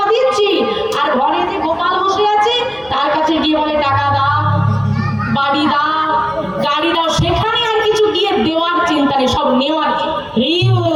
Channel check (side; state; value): both; identical; correlation 1.00